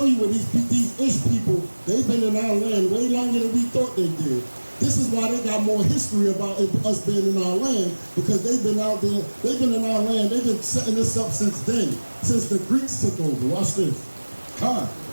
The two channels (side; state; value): both; inverted; correlation -1.00